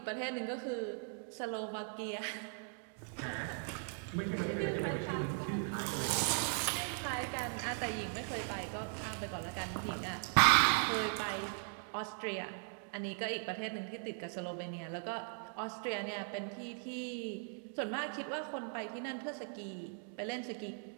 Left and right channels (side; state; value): left; silent; 52 dB below the other